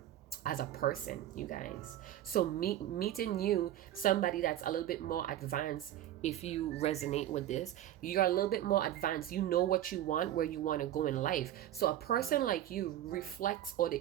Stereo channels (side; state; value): left; quieter; 12.5 dB